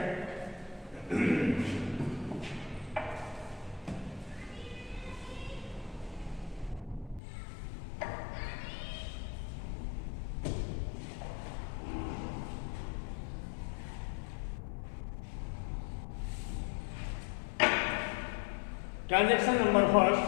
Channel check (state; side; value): drops out; right; at 7.2 s